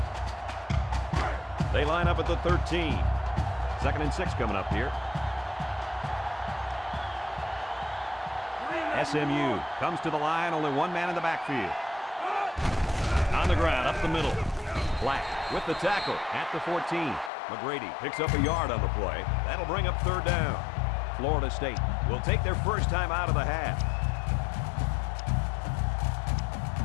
They line up at the 13. 2nd and 6 coming up here. SMU comes to the line, only one man in the backfield. On the ground, up the middle. Black with the tackle at the 14. McGrady picks up a yard on the play. That'll bring up 3rd down. Florida State will take their first time out of the half.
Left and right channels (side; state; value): right; drops out; at 17.3 s